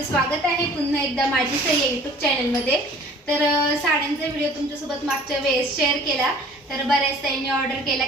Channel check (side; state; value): both; normal; correlation 0.49